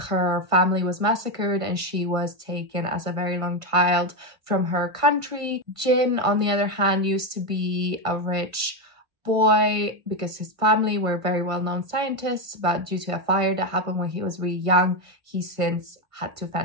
family was massacred and she was taken as a very young child from her country. Jin, on the other hand, used to be a rich boy because his family were very well-known scientists, but due to a fire that happened when he was really young, he since had to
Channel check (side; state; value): left; late; 1.5 ms